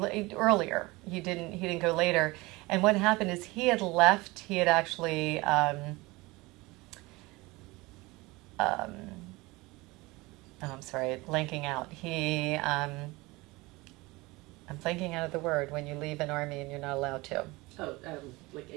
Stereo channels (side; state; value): left; quieter; 22.4 dB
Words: earlier. He didn't go later. And what happened is he had left. He had actually I'm sorry, blanking out. I'm blanking out of the word when you leave an army and you're not allowed to. Oh, like